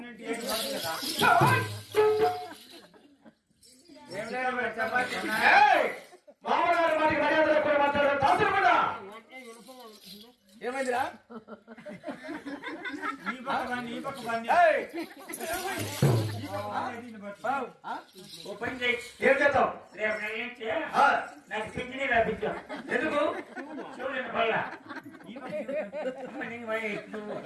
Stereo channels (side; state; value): both; identical; correlation 1.00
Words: మామగారు వారికి మర్యాద లేకుండా మాట్లాడారు. దాసులు కూడా ఏమైందిరా? ఏం చేద్దాం? నాకు పింఛనీ రాపించాం. ఎందుకు? చూడండి వల్ల